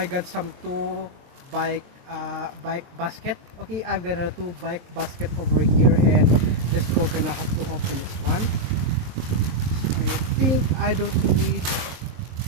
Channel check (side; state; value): left; late; 23 ms